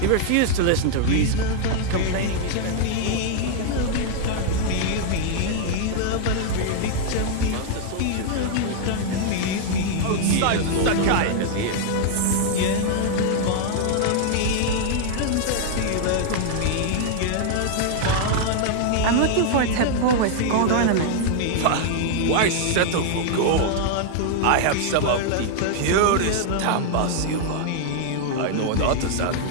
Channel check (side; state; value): both; different; correlation 0.00